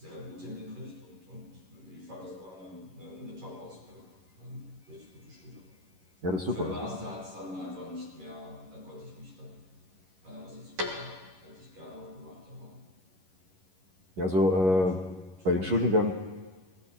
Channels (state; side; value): late; left; 11 ms